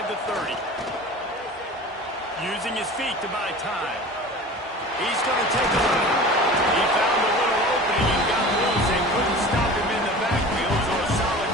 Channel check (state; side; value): normal; both; correlation 0.38